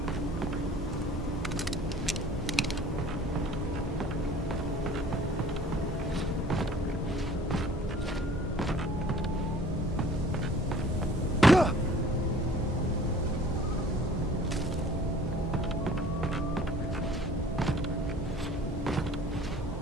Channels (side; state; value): both; normal; correlation 0.50